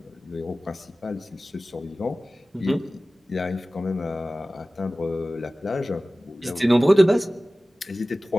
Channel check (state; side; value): normal; both; correlation 0.97